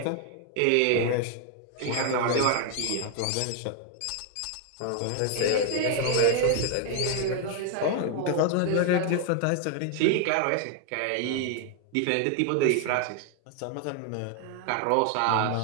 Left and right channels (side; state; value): both; different; correlation 0.00